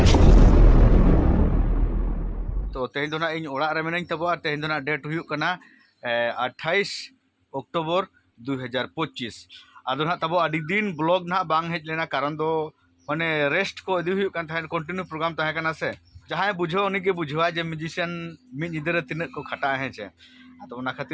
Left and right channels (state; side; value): identical; both; correlation 1.00